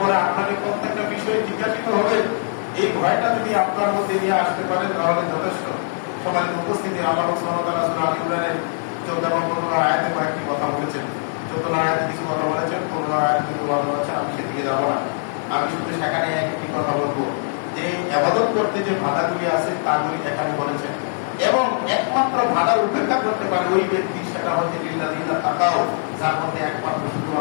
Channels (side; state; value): right; silent; 64 dB below the other